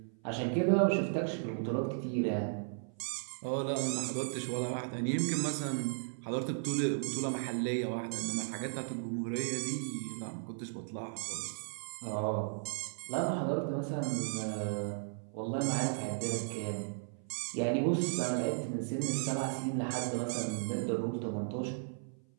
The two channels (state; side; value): silent; left; 54 dB below the other